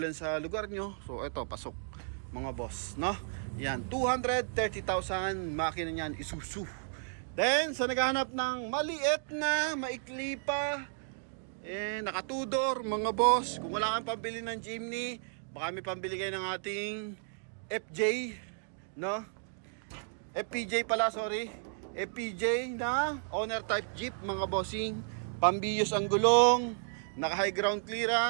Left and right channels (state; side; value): silent; left; digital silence